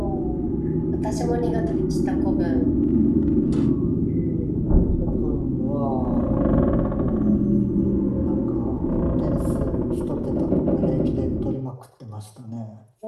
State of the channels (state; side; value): identical; both; correlation 1.00